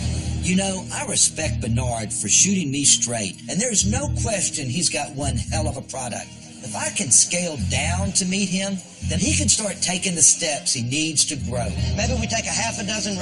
You know, I respect Bernard for shooting me straight, and there's no question he's got one hell of a product. If I can scale down to meet him, then he can start taking the steps he needs to grow. Maybe we take a half a dozen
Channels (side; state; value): both; identical; correlation 1.00